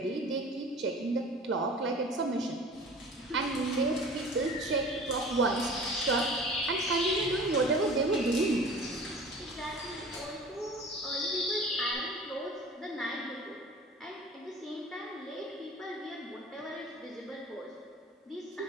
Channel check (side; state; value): both; normal; correlation 0.42